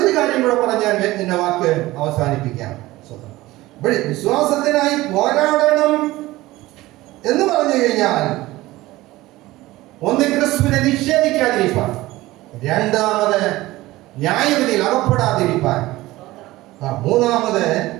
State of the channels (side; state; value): left; quieter; 18.1 dB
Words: കാര്യം കൂടെ പറഞ്ഞാൽ എന്റെ വാക്ക് അവസാനിപ്പിക്കാം. വിശ്വാസത്തിനായി പോരാടണം എന്ന് പറഞ്ഞു കഴിഞ്ഞാൽ ഒന്ന് ക്രിസ്തുവിനെ നിഷേധിക്കാതിരിക്കാൻ, രണ്ടാമത് ന്യായവിധിയിൽ അകപ്പെടാതിരിക്കാൻ, മൂന്നാമത്